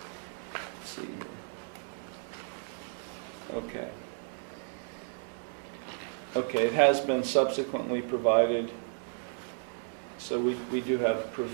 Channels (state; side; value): silent; left; 56 dB below the other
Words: let's see here. Okay. Okay, it has been subsequently provided, so we do have